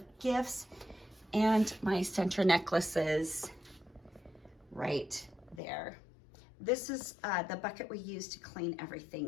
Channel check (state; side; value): drops out; right; at 5.6 s